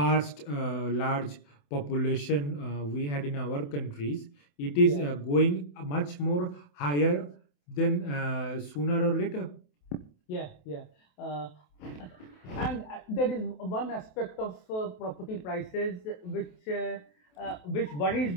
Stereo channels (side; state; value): right; late; 28 ms